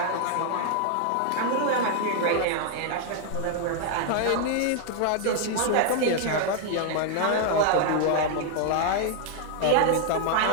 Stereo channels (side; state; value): both; different; correlation 0.00